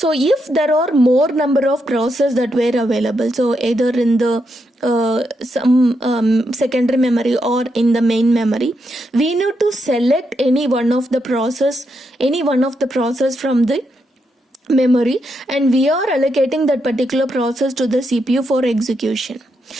if there are more number of processes that were available, so either in the some secondary memory or in the main memory, we need to select any one of the process from the memory, and we are allocating that particular process to the CPU for execution.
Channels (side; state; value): both; normal; correlation 0.82